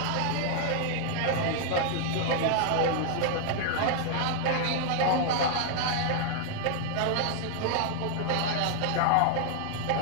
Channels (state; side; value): different; both; correlation 0.00